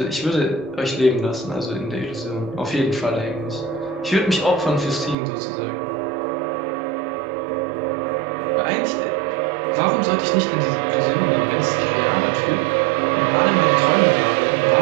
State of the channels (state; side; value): drops out; left; at 5.2 s